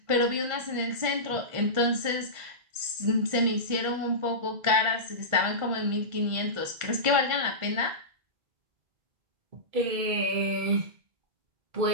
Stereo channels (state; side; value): late; left; 1.5 ms